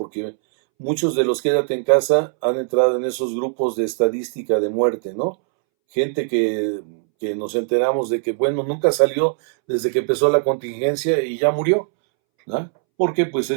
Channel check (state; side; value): silent; left; 65 dB below the other